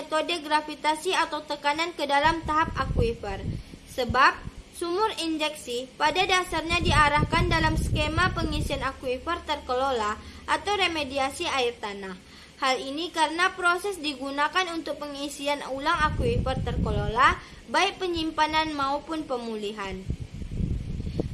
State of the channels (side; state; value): both; identical; correlation 1.00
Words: gravitasi atau tekanan ke dalam tahap akuifer. Sebab sumur injeksi pada dasarnya diarahkan dalam skema pengisian akuifer terkelola atau remediasi air tanah. Hal ini karena proses digunakan untuk pengisian ulang akuifer terkelola, baik penyimpanan maupun pemulihan,